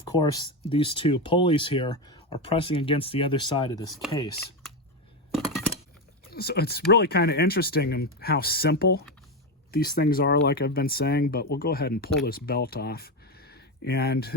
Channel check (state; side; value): normal; both; correlation 0.13